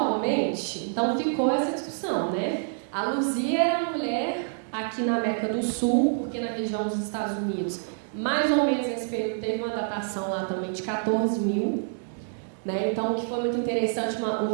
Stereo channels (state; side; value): silent; left; digital silence